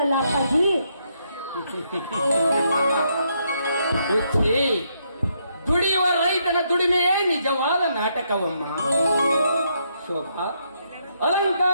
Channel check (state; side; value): inverted; both; correlation -0.76